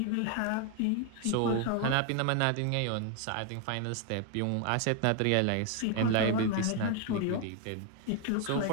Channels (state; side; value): different; both; correlation 0.01